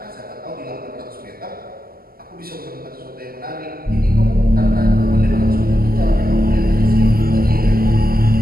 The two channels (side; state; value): left; late; 0.43 ms